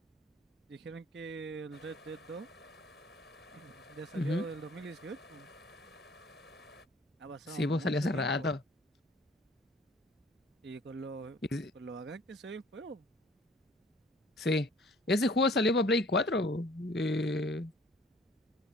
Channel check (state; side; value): normal; both; correlation 0.54